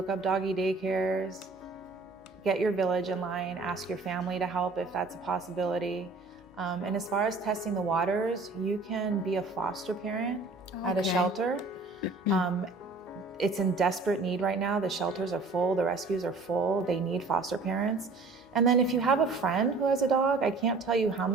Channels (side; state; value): left; quieter; 3.7 dB